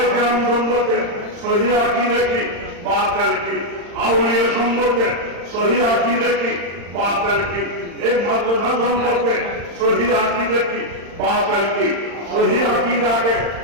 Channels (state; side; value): late; left; 35 ms